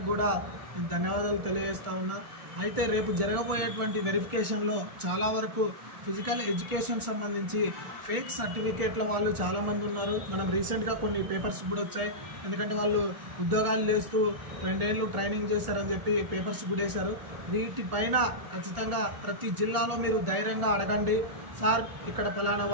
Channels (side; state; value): left; late; 1.4 ms